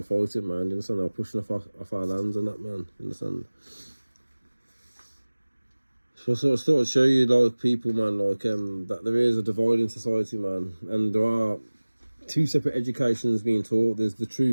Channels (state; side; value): inverted; both; correlation -1.00